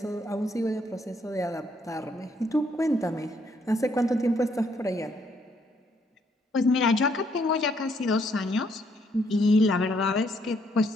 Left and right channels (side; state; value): both; normal; correlation 0.71